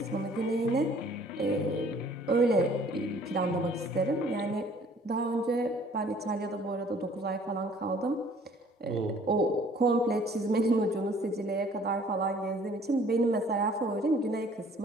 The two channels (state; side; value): normal; both; correlation 0.56